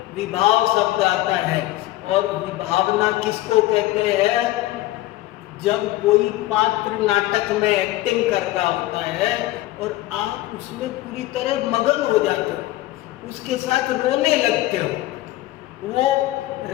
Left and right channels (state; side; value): quieter; right; 16.8 dB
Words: विभाव शब्द आता है, और विभावना किसको कहते हैं? जब कोई पात्र नाटक में एक्टिंग कर रहा होता है और आप उसमें पूरी तरह मगन हो जाते हो, उसके साथ रोने लगते हो। वो